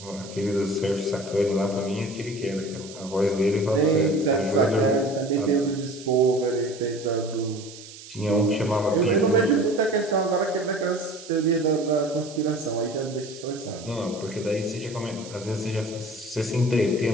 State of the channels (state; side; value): noise; right; hiss, 16 dB below the sound